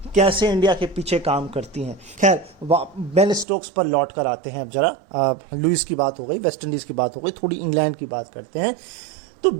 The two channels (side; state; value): left; drops out; at 3.5 s